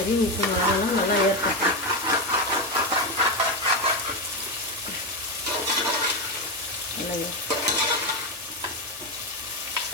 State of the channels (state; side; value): noise; left; hum, 30 dB below the sound